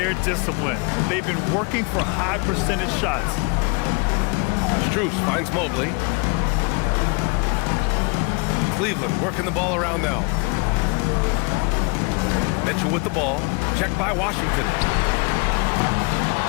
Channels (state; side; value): quieter; right; 31.6 dB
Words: discipline. They've been working for high percentage shots. Strus finds Mobley. Cleveland working the ball around now. Mitchell with the ball. Checked by Washington.